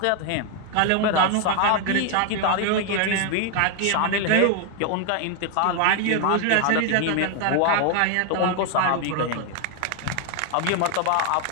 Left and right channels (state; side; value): different; both; correlation 0.01